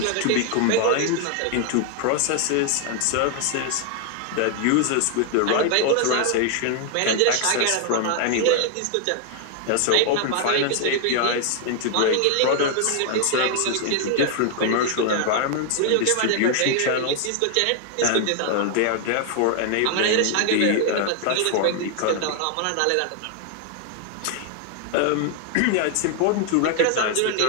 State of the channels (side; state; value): both; different; correlation 0.00